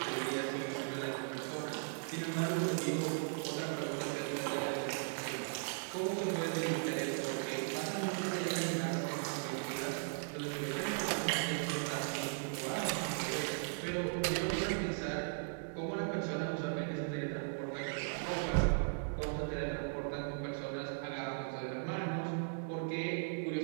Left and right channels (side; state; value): left; silent; 53 dB below the other